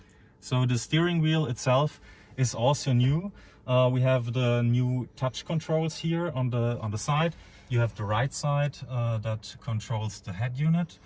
So the steering wheel itself is also new. We have the new touch controls here on the side. You have the right side that controls the head unit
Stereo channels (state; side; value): identical; both; correlation 1.00